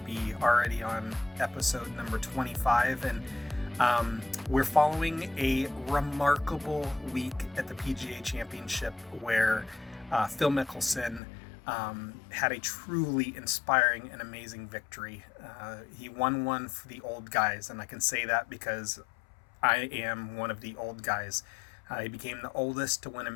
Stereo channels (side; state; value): right; drops out; at 11.2 s